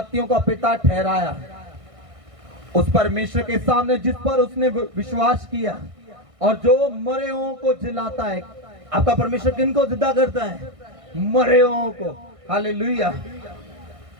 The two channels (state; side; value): late; left; 1.6 ms